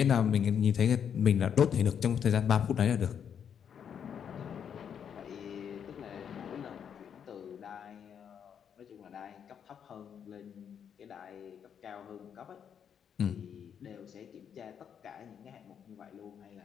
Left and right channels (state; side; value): quieter; right; 8.1 dB